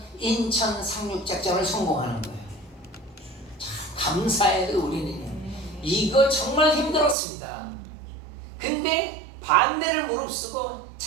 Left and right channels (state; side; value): drops out; left; at 7.2 s